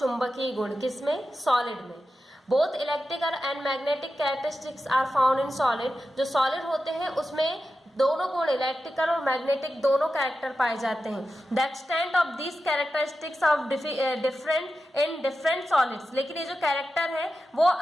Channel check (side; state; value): both; normal; correlation 0.91